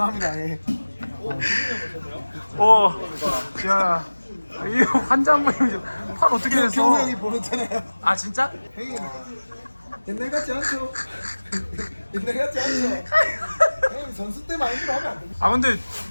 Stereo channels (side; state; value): both; inverted; correlation -1.00